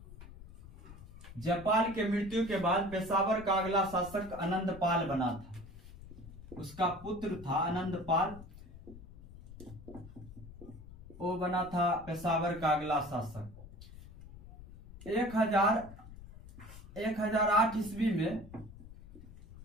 जापाल के मृत्यु के बाद पेशावर का अगला शासक आनंदपाल बना था। उसका पुत्र था आनंदपाल, वो बना था पेशावर का अगला शासक। 1008 ईस्वी में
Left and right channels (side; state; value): left; noise; rumble, 16 dB below the sound